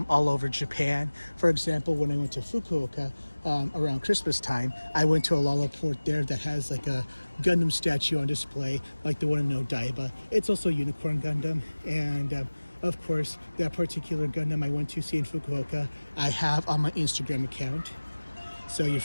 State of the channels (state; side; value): inverted; both; correlation -1.00